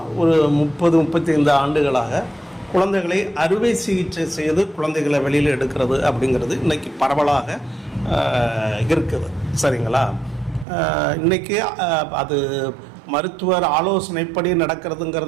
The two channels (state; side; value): drops out; left; at 10.7 s